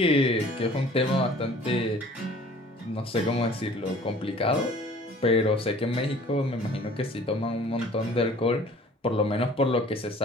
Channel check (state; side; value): normal; both; correlation 0.49